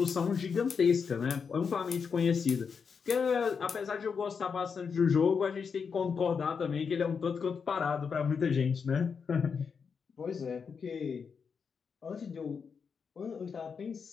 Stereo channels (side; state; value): right; quieter; 6.0 dB